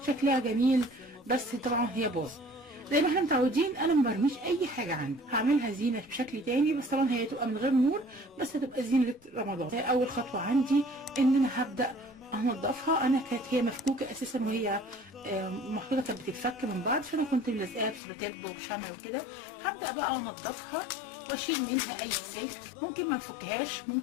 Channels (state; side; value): drops out; right; at 18.0 s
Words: شكلها جميل، بس طبعا هي باظ. زي ما احنا متعودين انا ما برميش اي حاجه عندي، هعملها زينه بشكل تاني، بس طبعا هي تبقى من غير نور، بس هتبقى زينه رمضان. اول خطوه عندي ان انا هبدا انضفها. انا كانت هي مفكوكه اساسا، وهي محطوطه كانت بتتفك من بعض، فانا كنت ملزقاها بسلوتيب وبشمع وكده. هبدا بقى انضفها واشيل منها اي سلك، ممكن ما نفكهاش،